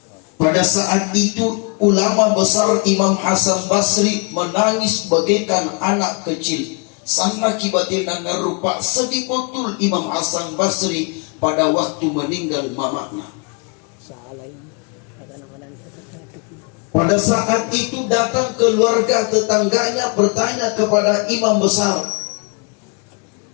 Pada saat itu ulama besar Imam Hasan Basri menangis bagaikan anak kecil. Sama kibatina ngarupa sedih betul Imam Hasan Basri pada waktu meninggal mamanya. Pada saat itu datang keluarga tetangganya bertanya kepada imam besar,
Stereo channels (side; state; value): right; quieter; 34.9 dB